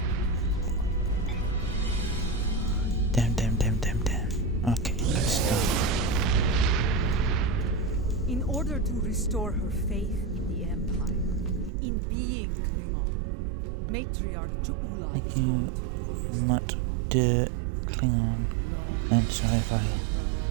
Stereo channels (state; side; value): drops out; left; at 11.7 s